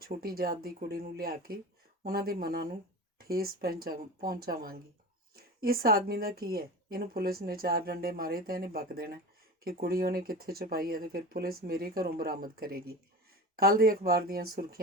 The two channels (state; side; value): normal; both; correlation 0.30